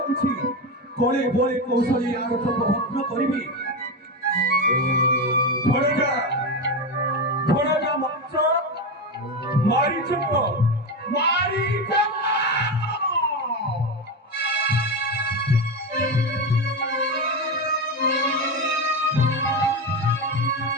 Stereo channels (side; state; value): both; normal; correlation 0.16